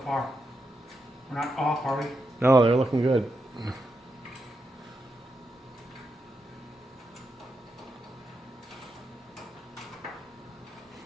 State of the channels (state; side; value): normal; both; correlation 0.85